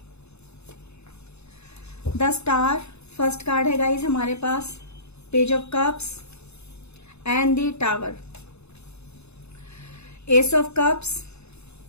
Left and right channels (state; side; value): late; right; 0.80 ms